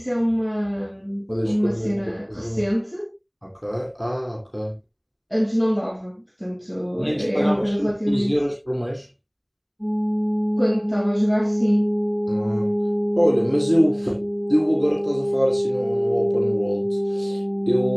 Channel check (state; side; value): identical; both; correlation 1.00